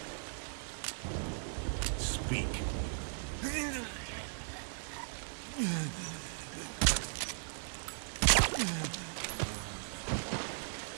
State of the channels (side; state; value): left; silent; 53 dB below the other